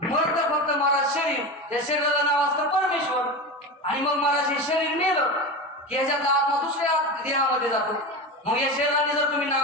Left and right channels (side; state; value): both; normal; correlation 0.24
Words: मग तर फक्त महाराज शरीर, त्या शरीराला नाव असतं परमेश्वर. आणि मग महाराज हे शरीर मेलं की ह्याच्यातला आत्मा दुसऱ्या देहामध्ये जातो. मग या शरीराने जर तुम्ही